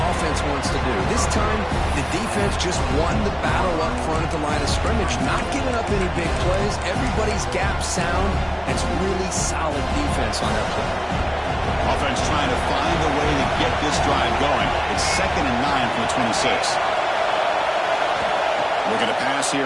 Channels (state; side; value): identical; both; correlation 1.00